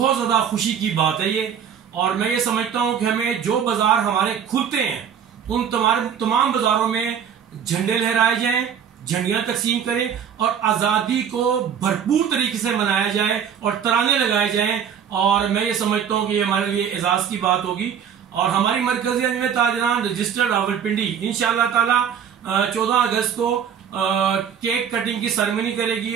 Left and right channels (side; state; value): left; quieter; 8.1 dB